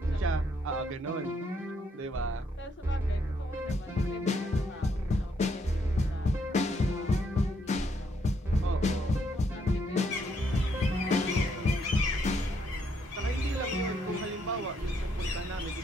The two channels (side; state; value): both; normal; correlation 0.73